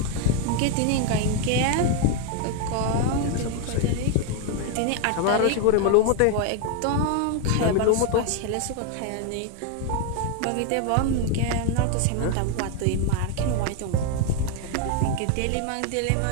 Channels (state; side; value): different; both; correlation 0.01